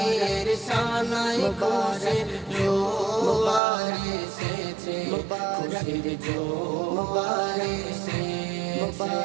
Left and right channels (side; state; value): left; drops out; at 3.6 s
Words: শানায় খুশির জোয়ার এসেছে, খুশির জোয়ার এসেছে।